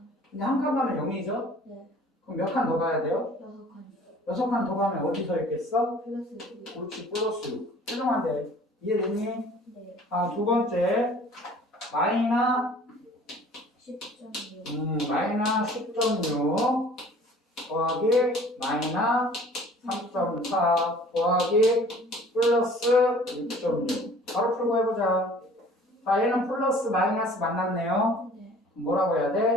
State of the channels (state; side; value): normal; both; correlation 0.50